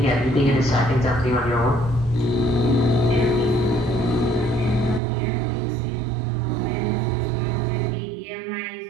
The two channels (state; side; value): drops out; left; at 5.0 s